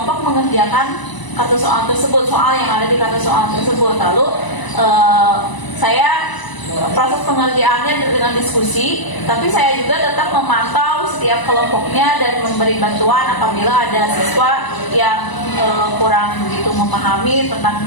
mengerjakan kartu soal tersebut, soal yang ada di kartu soal tersebut. Lalu saya proses pengerjaannya dengan diskusi, tapi saya juga tetap memantau setiap kelompoknya dan memberi bantuan apabila ada siswa yang kurang begitu memahami tentang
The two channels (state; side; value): late; right; 1.0 ms